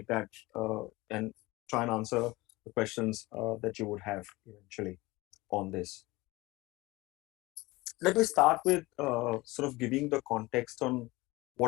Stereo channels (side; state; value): right; quieter; 21.1 dB